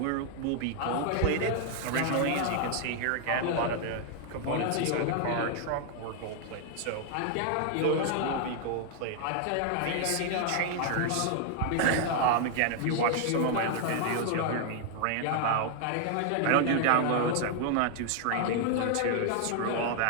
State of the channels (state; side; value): different; both; correlation 0.00